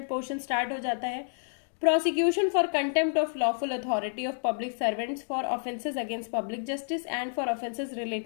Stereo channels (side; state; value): right; silent; digital silence